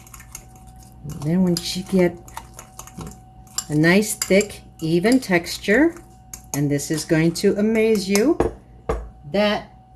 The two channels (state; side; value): identical; both; correlation 1.00